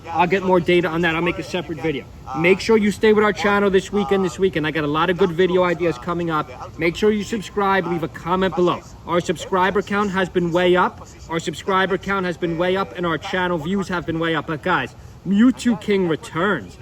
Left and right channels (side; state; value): both; identical; correlation 1.00